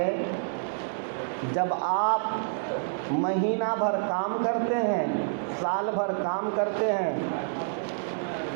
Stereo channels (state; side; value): silent; left; digital silence